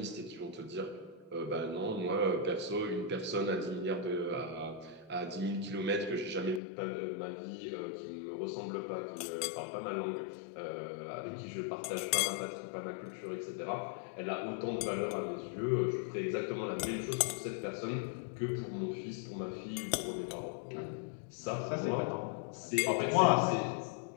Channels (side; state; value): right; drops out; at 6.6 s